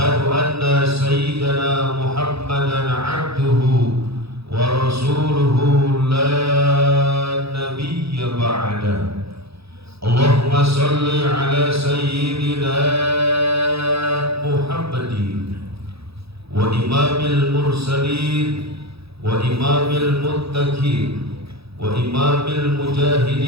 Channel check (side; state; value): left; late; 0.77 ms